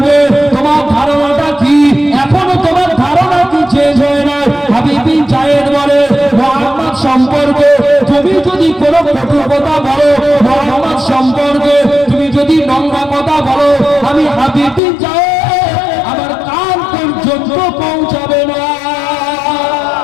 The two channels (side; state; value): right; drops out; at 14.8 s